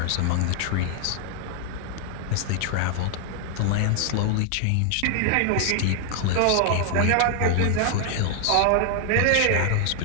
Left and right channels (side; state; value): both; different; correlation 0.00